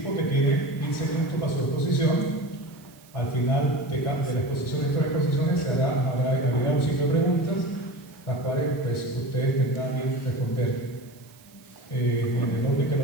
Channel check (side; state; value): right; noise; hiss, 26 dB below the sound